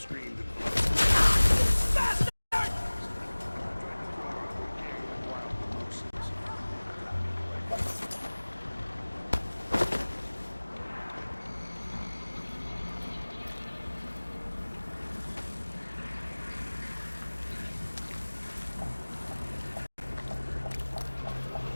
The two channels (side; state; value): both; inverted; correlation -1.00